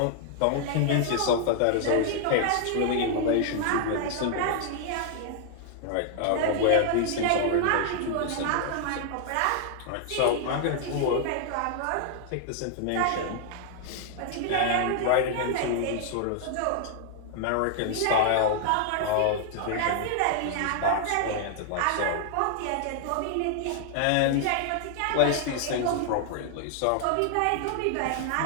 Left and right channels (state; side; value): different; both; correlation 0.00